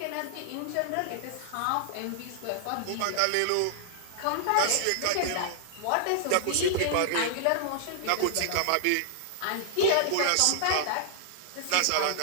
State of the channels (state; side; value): different; both; correlation -0.01